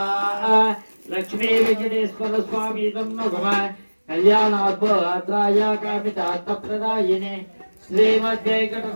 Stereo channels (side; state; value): both; inverted; correlation -1.00